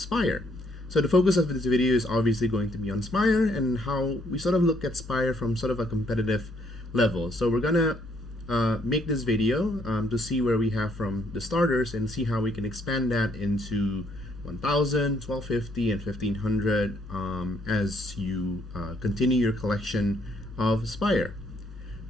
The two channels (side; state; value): both; normal; correlation 0.69